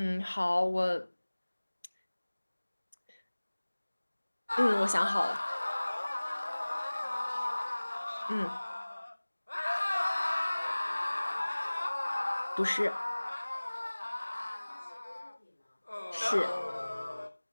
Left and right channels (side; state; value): both; inverted; correlation -1.00